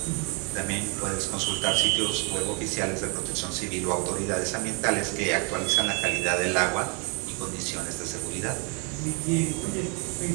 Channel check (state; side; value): quieter; left; 34.5 dB